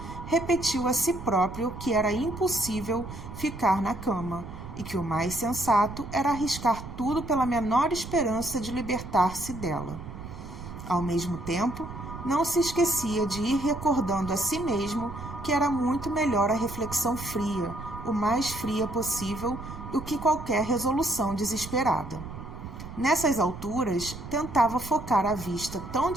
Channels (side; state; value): right; noise; rumble, 11 dB below the sound